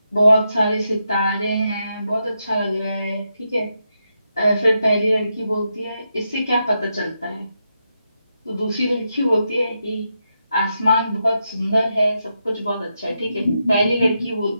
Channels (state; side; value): inverted; both; correlation -0.84